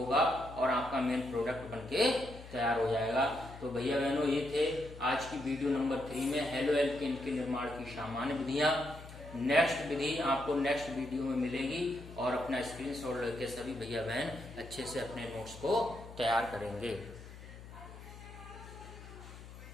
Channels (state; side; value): noise; left; hum, 15 dB below the sound